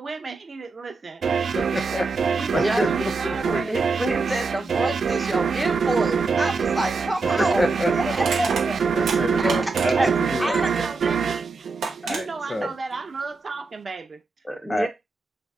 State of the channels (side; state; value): left; quieter; 3.8 dB